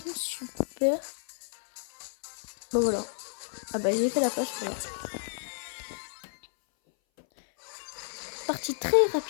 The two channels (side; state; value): right; silent; 57 dB below the other